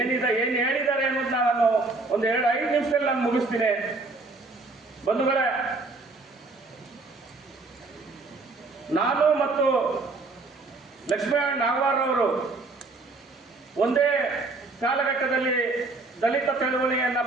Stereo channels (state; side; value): quieter; left; 3.5 dB